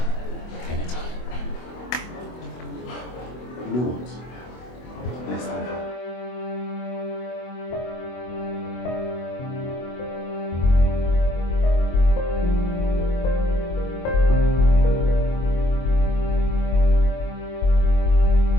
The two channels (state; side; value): late; right; 24 ms